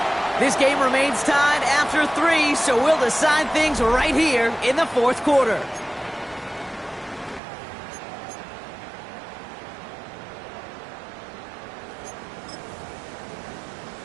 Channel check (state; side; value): drops out; left; at 7.4 s